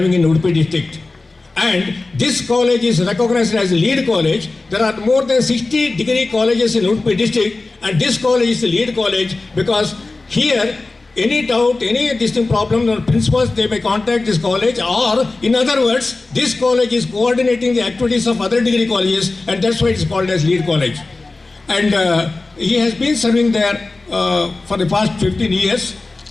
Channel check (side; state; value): right; quieter; 3.4 dB